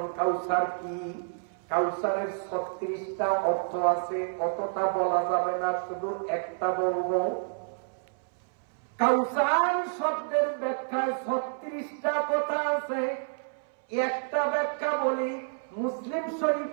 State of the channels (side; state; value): left; silent; 59 dB below the other